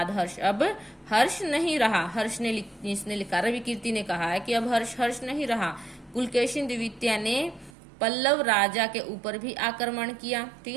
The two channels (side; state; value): left; drops out; at 7.7 s